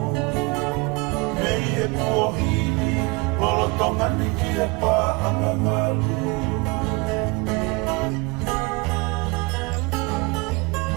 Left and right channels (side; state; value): left; quieter; 27.0 dB